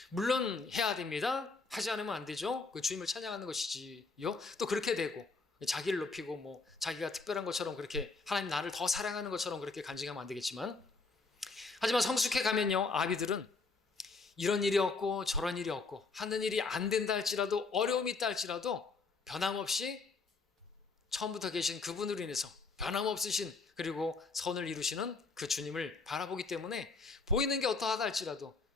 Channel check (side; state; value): right; quieter; 4.2 dB